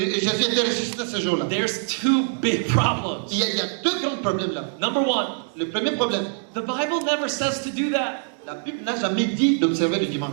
était ressuscité ce jour-là. There's two big problems. Il y a deux grands problèmes là. Number one, Le premier problème, the Bible never says to do that. la Bible n'a jamais dit d'observer le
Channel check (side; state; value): left; silent; 63 dB below the other